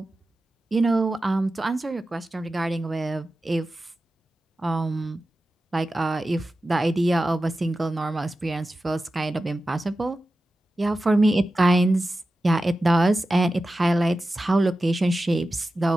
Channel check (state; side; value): normal; both; correlation 0.93